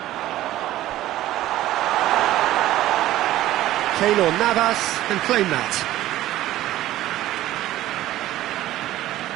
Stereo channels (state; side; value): quieter; left; 14.6 dB